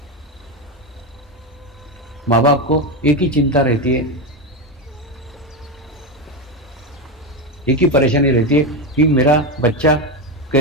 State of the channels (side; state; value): both; normal; correlation 0.12